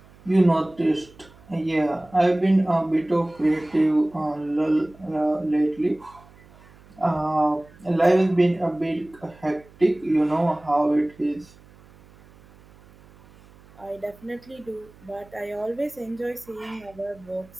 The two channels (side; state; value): right; noise; hum, 25 dB below the sound